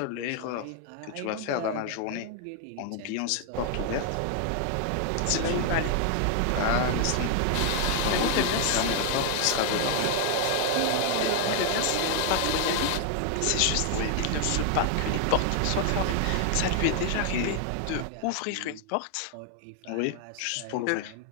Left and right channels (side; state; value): both; different; correlation 0.00